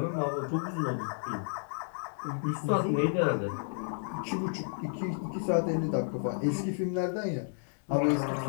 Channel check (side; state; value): right; silent; digital silence